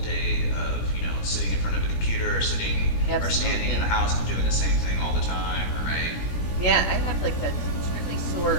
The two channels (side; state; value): right; late; 17 ms